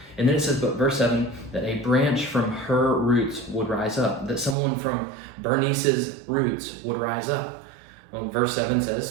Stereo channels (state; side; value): drops out; left; at 4.5 s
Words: And then it says, but verse 7, that a branch from her roots would rise up, that someone from Bernice's roots would rise up. Well, verse 7